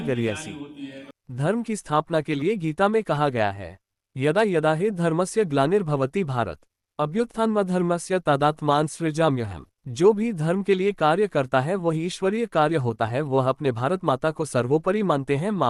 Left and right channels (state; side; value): identical; both; correlation 1.00